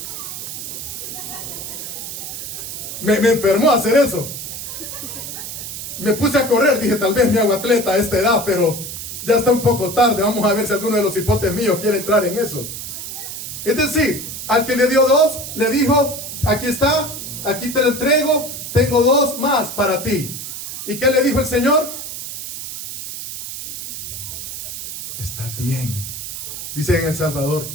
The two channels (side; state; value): right; noise; hiss, 8 dB below the sound